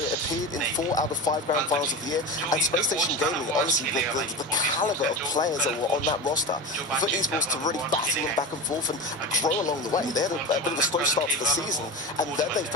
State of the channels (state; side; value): normal; both; correlation 0.26